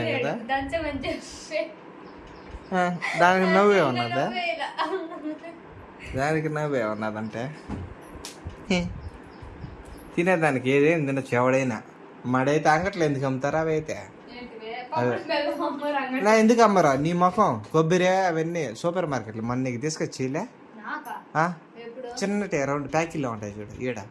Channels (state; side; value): identical; both; correlation 1.00